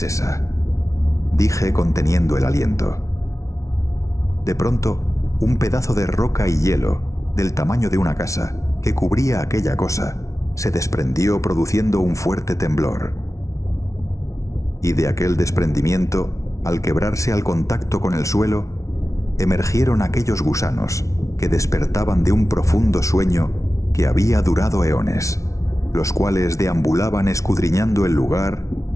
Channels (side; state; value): right; late; 0.15 ms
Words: esa?, dije conteniendo el aliento. De pronto, un pedazo de roca y hielo, del tamaño de una casa, que cubría aquella cosa, se desprendió produciendo un fuerte temblor. Y de aquel desprendimiento, al quebrarse al contacto con el suelo, emergieron aquellos gusanos que despertaban de un profundo sueño que había durado eones. los cuales deambulaban escudriñando el lugar